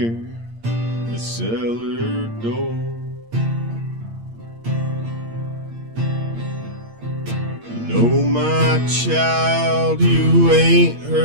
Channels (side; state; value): left; late; 8.7 ms